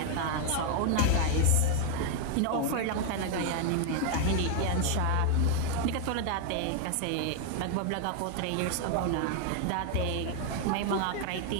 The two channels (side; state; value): both; different; correlation 0.01